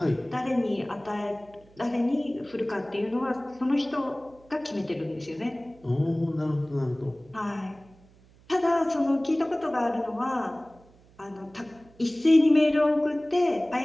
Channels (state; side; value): noise; right; hum, 27 dB below the sound